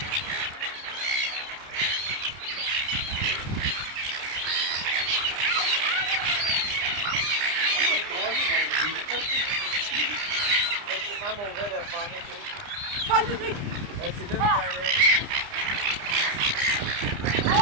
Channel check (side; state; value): left; late; 30 ms